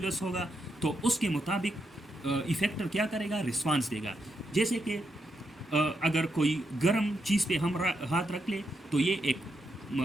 ہوگا تو اس کے مطابق افیکٹر کیا کرے گا؟ رسپانس دے گا. جیسے کہ اگر کوئی گرم چیز پہ ہم ہاتھ رکھ لے تو یہ ایک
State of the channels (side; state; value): both; normal; correlation 0.82